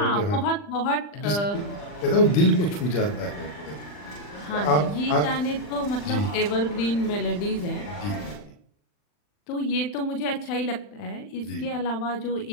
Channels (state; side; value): late; right; 40 ms